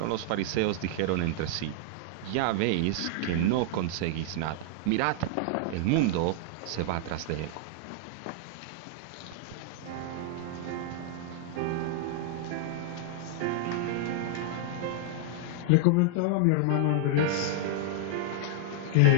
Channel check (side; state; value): both; different; correlation -0.01